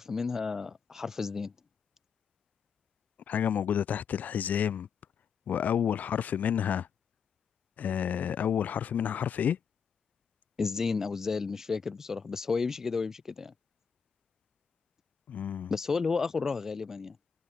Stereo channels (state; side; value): quieter; right; 6.5 dB